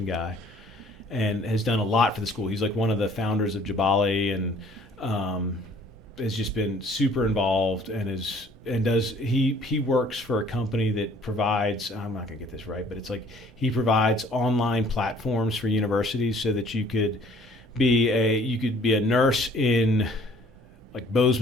guy, and has done a lot for the school. He's like one of the founders of Jabali, and has just been super involved, and he works for a company that provides, I'm not gonna get this right, but it's like he provides online platforms for universities so that you could be a nurse in like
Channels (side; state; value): both; normal; correlation 0.56